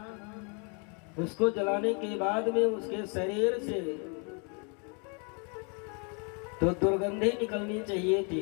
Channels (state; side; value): quieter; right; 35.9 dB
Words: उसको जलाने के बाद में उसके शरीर से तो दुर्गंधी निकलनी चाहिए थी,